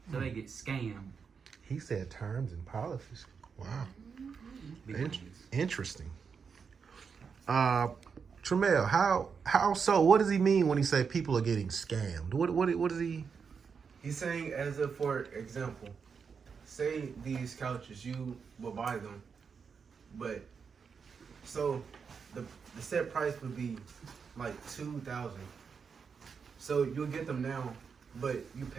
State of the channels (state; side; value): quieter; left; 6.0 dB